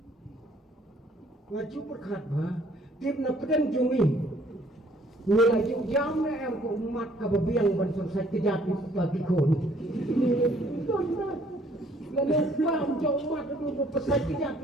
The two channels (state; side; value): normal; both; correlation 0.61